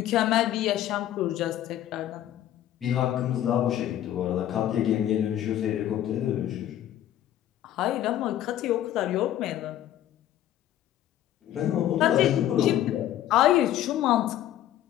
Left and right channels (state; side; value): quieter; right; 12.2 dB